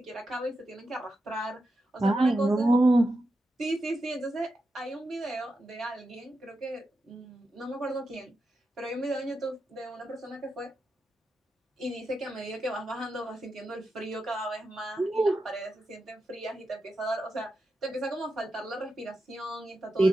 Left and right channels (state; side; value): normal; both; correlation 0.88